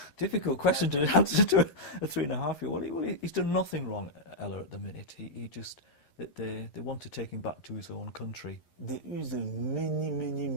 difficult question to answer to a 3.5-year-old. Well, he's done nothing wrong, Ella, at the minute. He just... that they want to take him back to his own country. There is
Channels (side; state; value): right; late; 11 ms